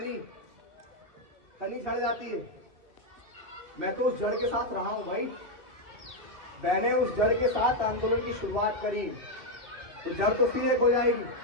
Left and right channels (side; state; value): left; late; 2.6 ms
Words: झड़ जाती है, मैं तो उस जड़ के साथ रहा हूं भाई। मैंने उस जड़ के साथ आंदोलन की शुरुआत करी, तो जड़ तो सीधे हो जाएगी।